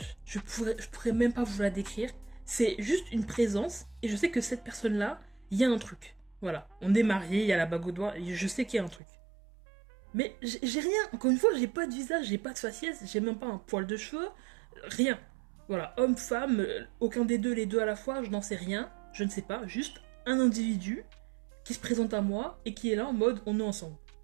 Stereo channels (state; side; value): drops out; left; at 9.0 s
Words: Je pourrais même pas vous la décrire. C'est juste une présence, et je sais que cette personne-là, il y a un truc. Voilà. On est mariés, il y a la bague au doigt, et je sais qu'il y a un truc. Mais j'ai rien. Encore une fois, j'ai pas de visage, j'ai pas de faciès, j'ai même pas un poil de cheveux, rien. Voilà, homme, femme, aucun des deux, les deux à la fois, je n'en sais rien, je ne sais pas, juste un individu qui se présente à moi et qui est là en mode on est ensemble.